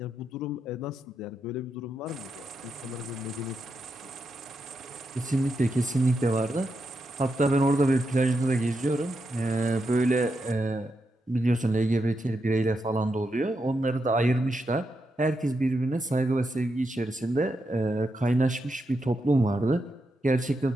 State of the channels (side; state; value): both; normal; correlation 0.85